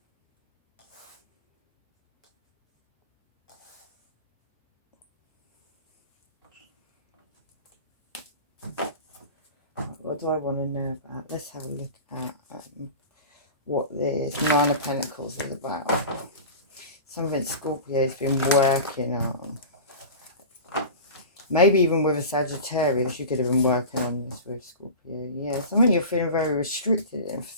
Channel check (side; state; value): both; inverted; correlation -0.32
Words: What do I want to know about? Let's have a look at what this Nine of Pentacles is about. Something Scorpio's been working on. Maybe even with a Sagittarius, you could have been working on this with Scorpio. Yeah, something you're feeling very restricted in for